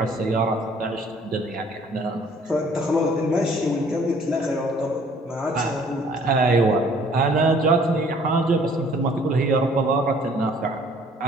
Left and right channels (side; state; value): both; normal; correlation 0.57